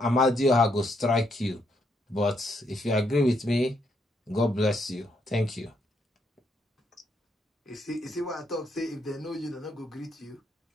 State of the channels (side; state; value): both; normal; correlation 0.75